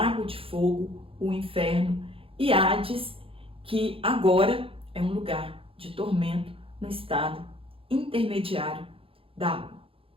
de fogo, o inferno, e Hades, que agora é um lugar de tormento no estado intermediário da alma.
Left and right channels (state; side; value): late; left; 0.27 ms